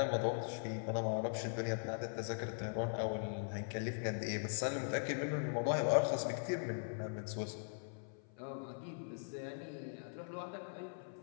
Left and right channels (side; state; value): right; silent; 51 dB below the other